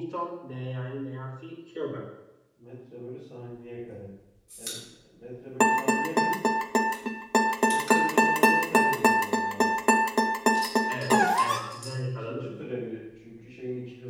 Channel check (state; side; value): identical; both; correlation 1.00